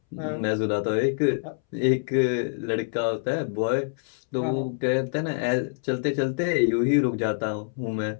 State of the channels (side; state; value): right; silent; 61 dB below the other